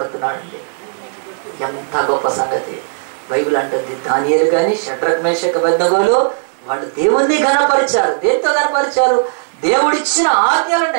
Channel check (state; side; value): silent; left; digital silence